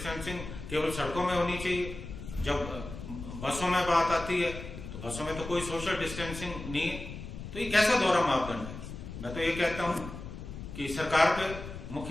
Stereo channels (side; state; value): left; noise; rumble, 10 dB below the sound